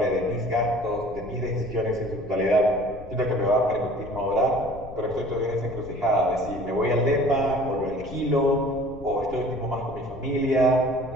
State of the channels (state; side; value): noise; left; rumble, 16 dB below the sound